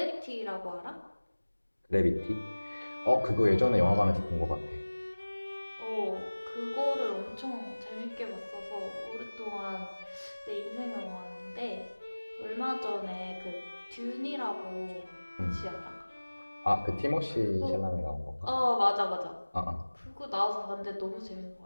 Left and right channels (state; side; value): inverted; both; correlation -1.00